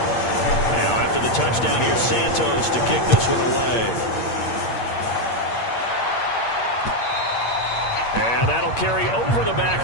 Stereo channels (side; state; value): right; late; 8.6 ms